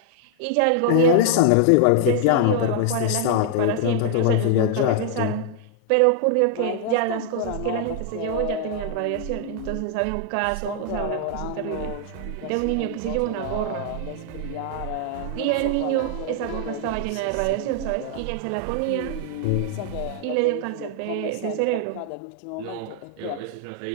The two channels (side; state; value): both; different; correlation -0.01